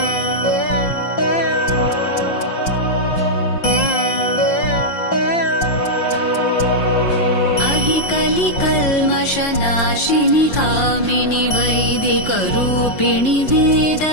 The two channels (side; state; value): right; late; 5.6 ms